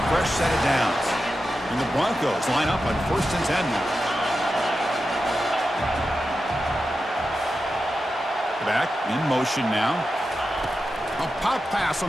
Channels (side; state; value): both; normal; correlation 0.90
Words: fresh set of downs. And the Broncos line up on 1st and 10 now. Back in motion now. A pop pass on